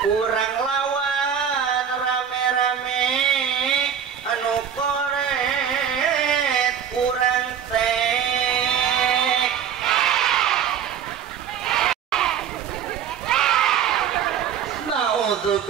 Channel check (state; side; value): quieter; left; 8.3 dB